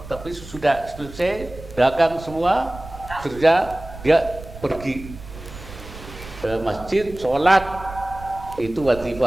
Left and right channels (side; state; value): right; noise; rumble, 15 dB below the sound